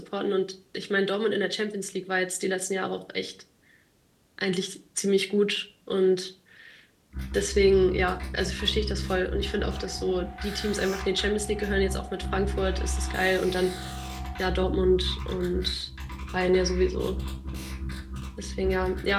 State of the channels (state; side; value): identical; both; correlation 1.00